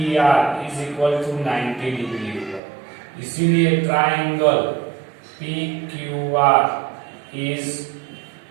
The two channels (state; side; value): drops out; left; at 2.6 s